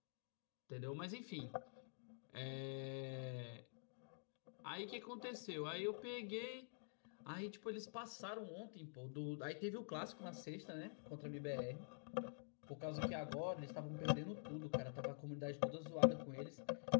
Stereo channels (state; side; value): silent; right; digital silence